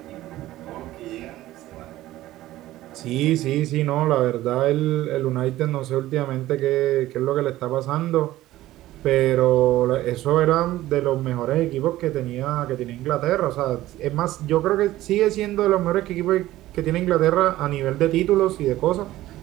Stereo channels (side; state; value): left; quieter; 15.6 dB